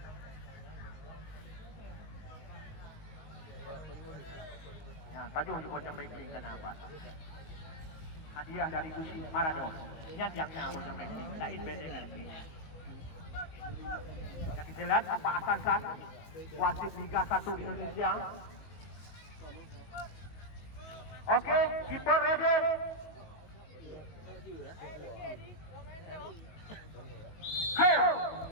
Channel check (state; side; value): late; right; 19 ms